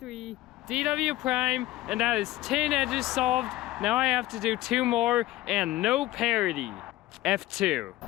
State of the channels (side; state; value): right; quieter; 16.7 dB